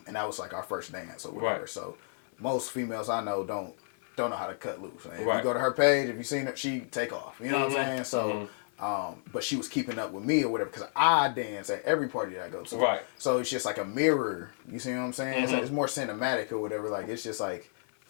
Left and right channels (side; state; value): right; silent; 57 dB below the other